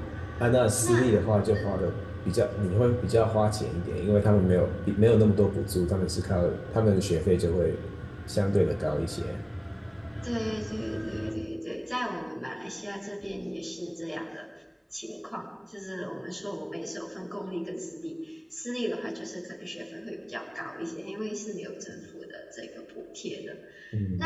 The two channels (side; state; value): both; identical; correlation 1.00